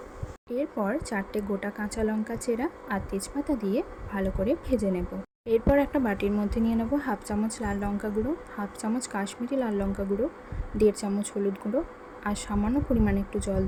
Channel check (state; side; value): identical; both; correlation 1.00